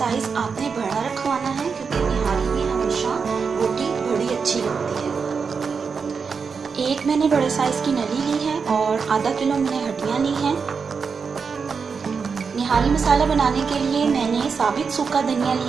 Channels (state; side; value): quieter; left; 5.6 dB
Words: आपने बड़ा रखवाना है क्योंकि निहारी में हमेशा बोटी बड़ी अच्छी लगती है। एक मैंने बड़े साइज की नली ली है और आधा किलो मैंने हड्डियाँ ली हैं। निहारी मसाला बनाने के लिए मैंने साबित सूखा धनिया